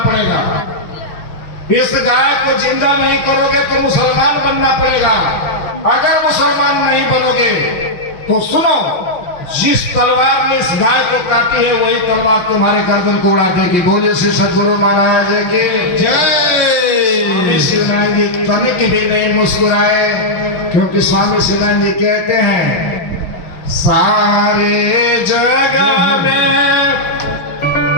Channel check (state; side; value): late; right; 6.1 ms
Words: इस गाय को जिंदा नहीं करोगे तो मुसलमान बनना पड़ेगा। अगर मुसलमान नहीं बनोगे तो सुनो, जिस तलवार ने इस गाय को काटी है वही तलवार तुम्हारे गर्दन को उड़ा देगी। बोले श्री सदगुरु महाराज की जय। स्वामी शिवानंद जी तनिक भी नहीं मुस्कुराए, क्योंकि स्वामी शिवानंद जी कहते हैं सारे जग में